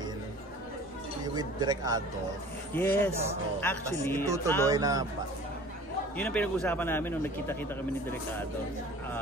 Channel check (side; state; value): both; normal; correlation 0.45